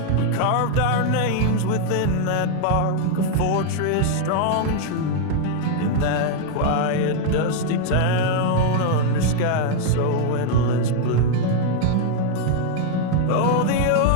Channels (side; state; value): both; different; correlation 0.00